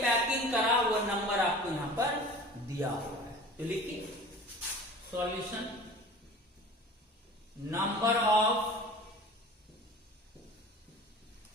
पैकिंग करा, वो नंबर आपको यहां पर दिया हुआ है। तो लिखिए solution, number of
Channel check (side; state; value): both; normal; correlation 0.41